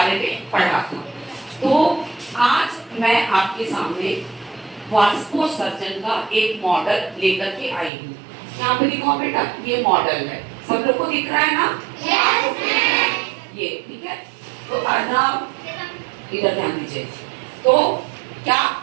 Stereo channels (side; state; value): left; drops out; at 7.9 s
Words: में पढ़ा था। तो आज मैं आपके सामने वाष्पोत्सर्जन का एक मॉडल लेकर के आई हूँ। यहाँ पे दिखाओ बेटा, ये मॉडल है, सब लोग को दिख रहा है ना? ये ठीक है। तो अर्नव इधर ध्यान दीजिए। तो क्या,